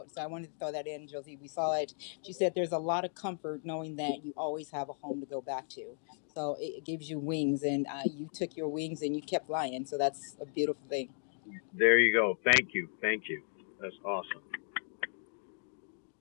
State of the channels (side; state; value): right; silent; 54 dB below the other